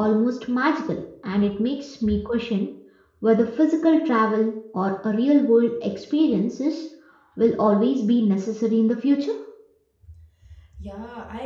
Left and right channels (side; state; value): both; identical; correlation 1.00